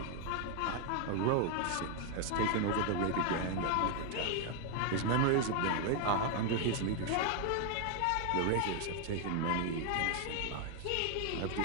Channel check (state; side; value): different; both; correlation 0.01